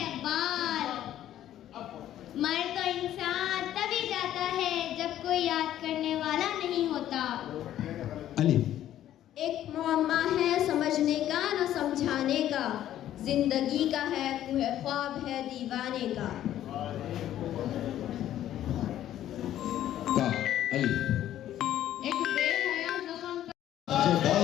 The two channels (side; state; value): right; quieter; 12.1 dB